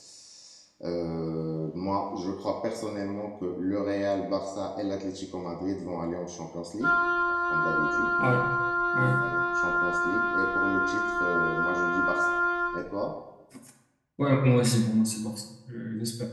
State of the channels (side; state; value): both; identical; correlation 1.00